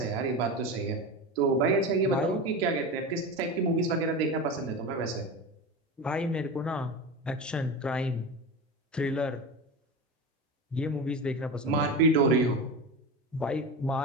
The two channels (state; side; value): normal; both; correlation 0.24